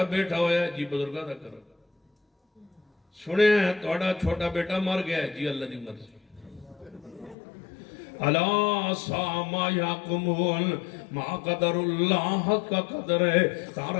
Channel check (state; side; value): drops out; right; at 7.4 s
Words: بیٹا ہویا ہے جی بزرگاں دا کرم سنے ہیں توڑا چھوٹا بیٹا مر گیا ہے جی اللہ دی مرضی اللہ ساما یاکمون ما قدر اللہ حق کا قدر ہے